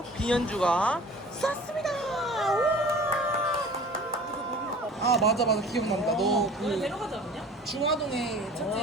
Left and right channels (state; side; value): normal; both; correlation 0.44